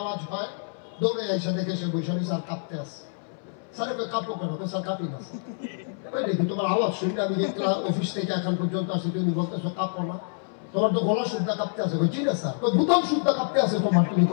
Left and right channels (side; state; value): right; silent; 60 dB below the other